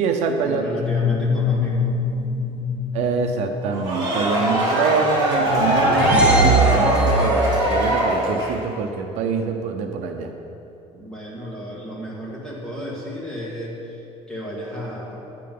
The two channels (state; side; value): normal; both; correlation 0.28